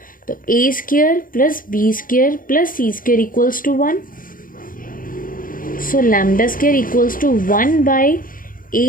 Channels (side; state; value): right; late; 0.40 ms